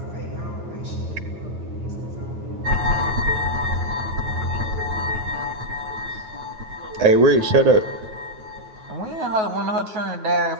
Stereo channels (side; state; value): left; late; 9.3 ms